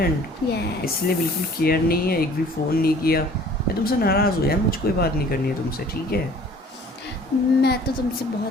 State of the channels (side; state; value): both; normal; correlation 0.51